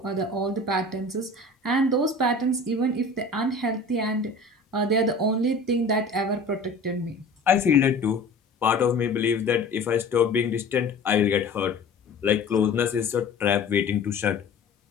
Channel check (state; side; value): quieter; right; 3.1 dB